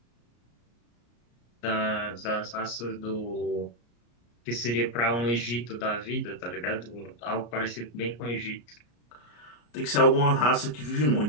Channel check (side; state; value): right; late; 34 ms